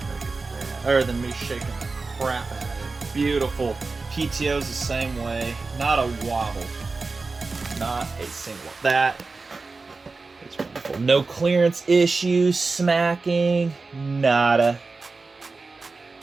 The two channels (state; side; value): quieter; left; 4.0 dB